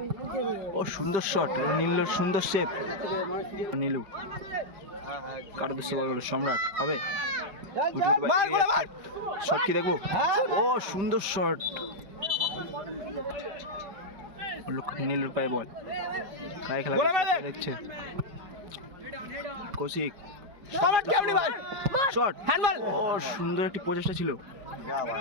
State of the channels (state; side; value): late; left; 5.1 ms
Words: ও সুন্দর শট নীলুর সুন্দর সেভ নীলু কার উদ্দেশ্যে বল বলো সম্রাট হবে শট কি দেখবো ও সুন্দর শট নীলুর পায়ে বল কায় খেলা দেখছে কৌশিক শট ও সুন্দর একটি প্রচেষ্টা ছিল